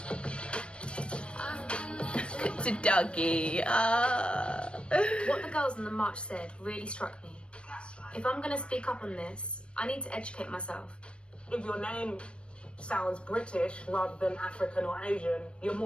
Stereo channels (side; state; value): right; late; 0.058 ms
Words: I've been there too Doggy. What the girls on the march said really struck me. If I'm going to speak up on this, I need to educate myself. If your name sounds British rather than African or Asian, you're